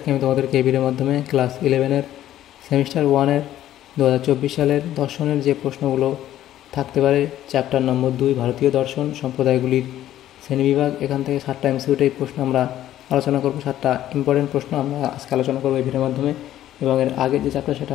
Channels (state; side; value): quieter; right; 12.7 dB